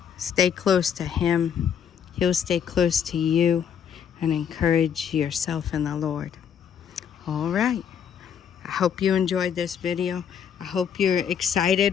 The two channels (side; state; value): right; quieter; 8.1 dB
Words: Stay close to Him. He'll stay close to you, and encourage yourself in the Lord. All right. I hope you enjoyed this video. I hope you're